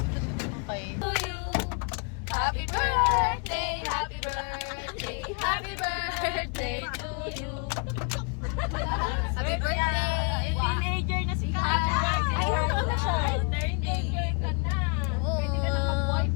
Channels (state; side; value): quieter; right; 36.2 dB